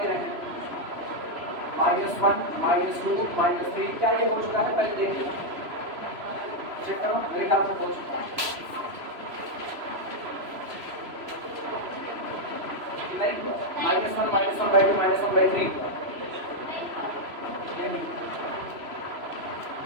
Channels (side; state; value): left; late; 3.0 ms